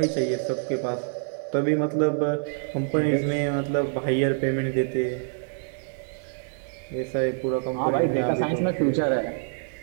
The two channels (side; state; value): left; silent; digital silence